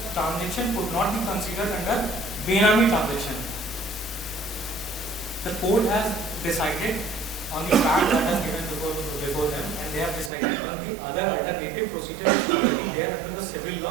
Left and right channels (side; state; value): left; drops out; at 10.3 s